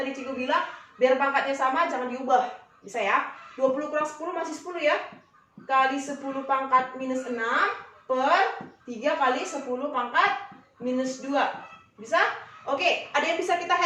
Cikgu bilang, biar pangkatnya sama, jangan diubah. Bisa ya? 20 kurang 10 masih 10 ya. Kali 10 pangkat minus 6 per 3 kali 10 pangkat minus 2. Bisa? Oke, ada yang bisa kita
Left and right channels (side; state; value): both; identical; correlation 1.00